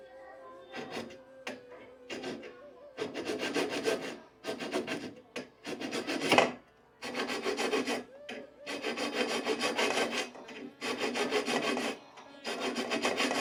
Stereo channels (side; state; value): both; identical; correlation 1.00